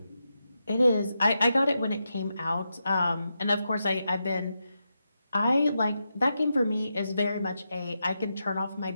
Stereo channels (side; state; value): both; inverted; correlation -0.87